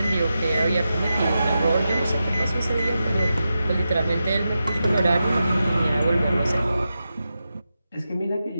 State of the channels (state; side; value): inverted; both; correlation -0.90